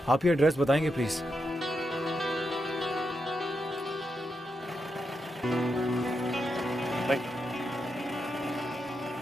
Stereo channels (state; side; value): normal; both; correlation 0.85